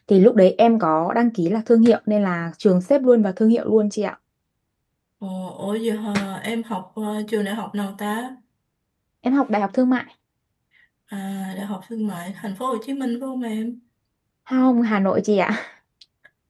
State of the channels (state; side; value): identical; both; correlation 1.00